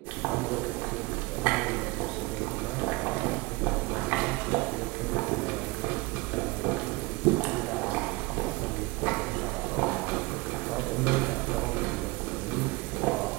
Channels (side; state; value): left; quieter; 24.4 dB